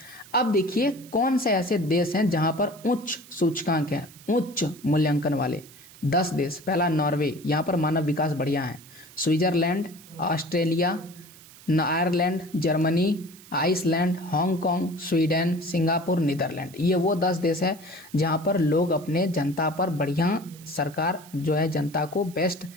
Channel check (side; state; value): right; noise; hiss, 21 dB below the sound